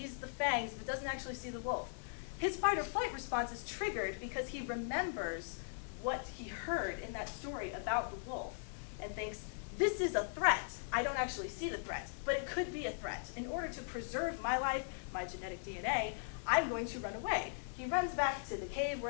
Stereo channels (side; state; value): right; silent; 52 dB below the other